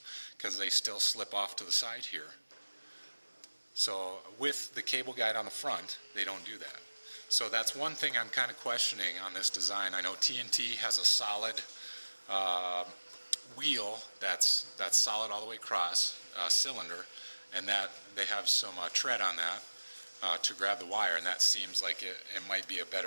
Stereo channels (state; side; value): inverted; both; correlation -1.00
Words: because they still slip off to the side here. So with the cable guide on the front, they don't do that. So that's one thing I'm kind of questioning on this design. I know TNT has a solid wheel that's solid all the way across, cylinder, and that they have some tread on that to grab the wire, and that seems like it might be a